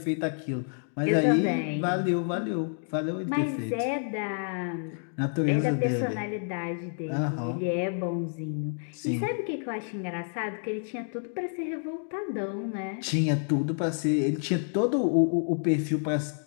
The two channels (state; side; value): silent; right; digital silence